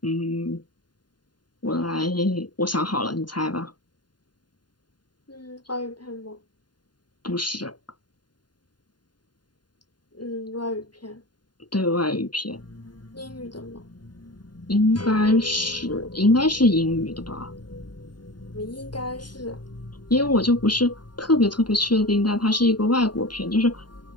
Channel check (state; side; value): late; right; 0.71 ms